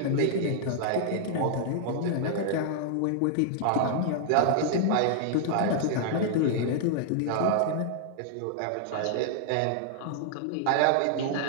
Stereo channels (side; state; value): both; different; correlation -0.01